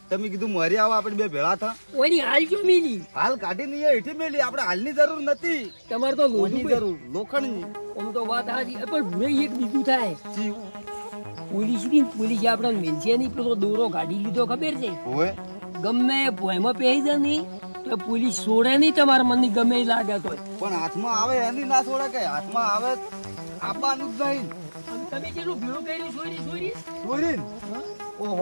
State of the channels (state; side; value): inverted; both; correlation -1.00